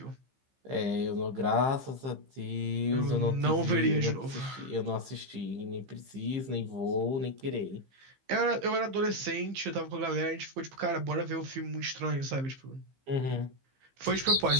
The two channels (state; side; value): late; left; 15 ms